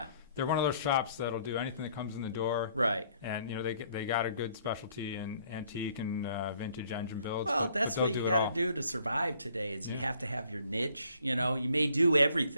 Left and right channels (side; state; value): both; inverted; correlation -0.63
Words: one of those shops that'll do anything that comes in the door. Right. And they got a good specialty in antique and vintage engine builds. Well, that's what you got to do to survive today. Is you have to have your niche. You may do